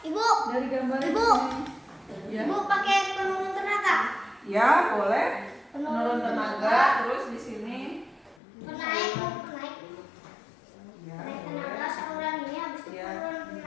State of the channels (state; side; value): drops out; right; at 8.3 s